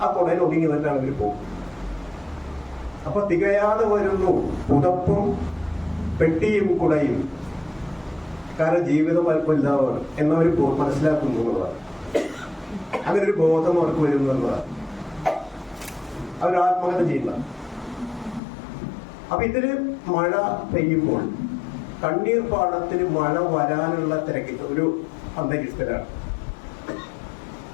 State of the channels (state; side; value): drops out; right; at 18.4 s